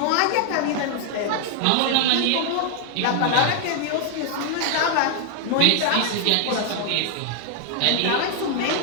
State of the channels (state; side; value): different; both; correlation 0.00